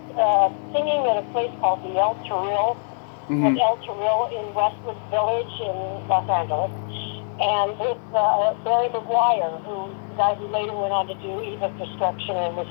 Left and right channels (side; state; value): right; silent; 63 dB below the other